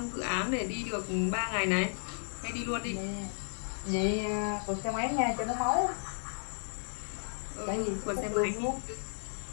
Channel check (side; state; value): right; silent; digital silence